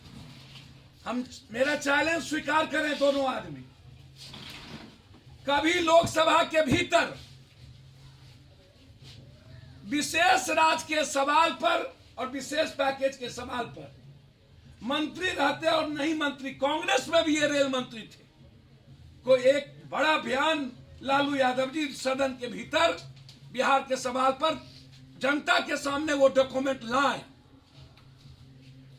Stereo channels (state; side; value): identical; both; correlation 1.00